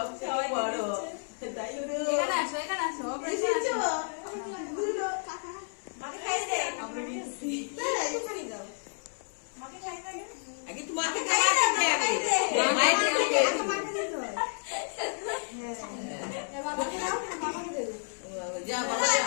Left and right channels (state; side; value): silent; right; 57 dB below the other